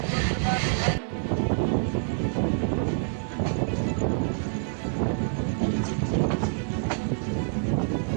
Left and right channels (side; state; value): left; silent; digital silence